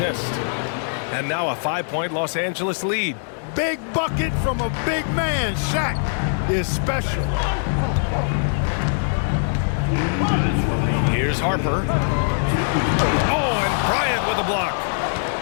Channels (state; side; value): silent; right; digital silence